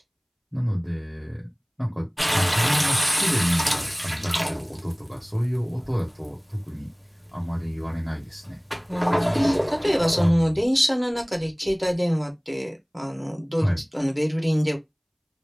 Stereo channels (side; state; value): both; identical; correlation 1.00